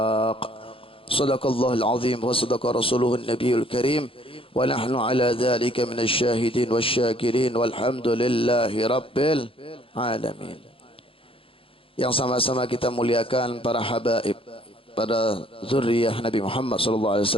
صدق الله العظيم وصدق رسوله النبي الكريم ونحن على ذلك من الشاهدين والشاكرين والحمد لله رب العالمين. Yang sama-sama kita muliakan para habaib, para zuriyah Nabi Muhammad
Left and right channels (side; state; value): right; late; 0.26 ms